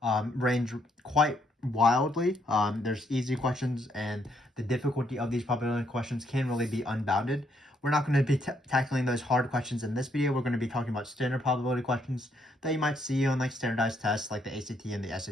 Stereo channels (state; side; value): normal; both; correlation 0.73